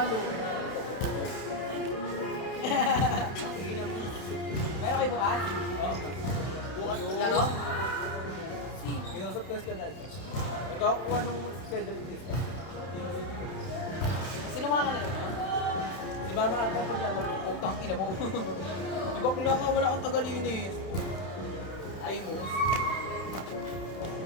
Meron kayo bukas? Oo. Bukas Laro? Kinusap ko na. Nagkakakuha nung schedule test. Sino makakalaro? Si Mama Ata po na lang. Putang ina mo. Di ba kula nga wala kang tagalinis? Amos.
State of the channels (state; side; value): late; right; 31 ms